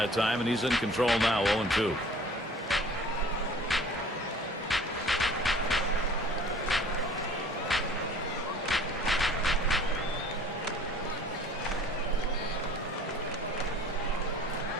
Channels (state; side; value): normal; both; correlation 0.49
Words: time, and he's in control now, 0-2.